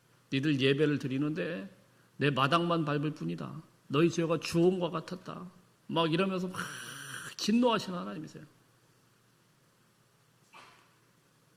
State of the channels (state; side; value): identical; both; correlation 1.00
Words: 니들 예배를 드리는데 내 마당만 밟을 뿐이다. 너희 죄가 주홍과 같았다. 막 이러면서 막 진노하시는 하나님이세요.